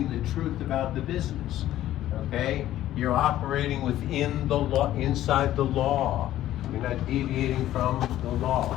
the truth about the business, okay? You're operating within the law, inside the law. You're not deviating from the law.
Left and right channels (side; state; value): right; quieter; 13.4 dB